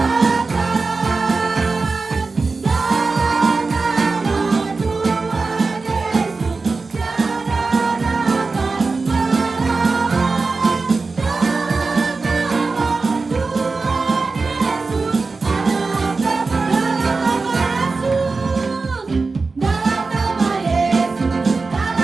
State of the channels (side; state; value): left; quieter; 4.0 dB